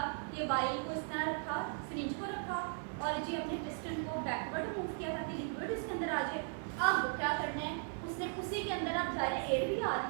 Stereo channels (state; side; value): silent; left; 53 dB below the other